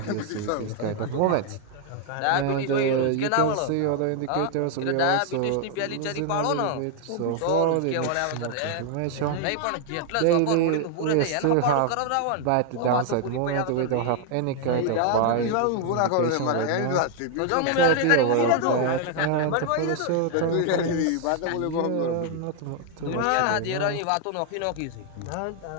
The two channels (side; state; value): both; different; correlation 0.00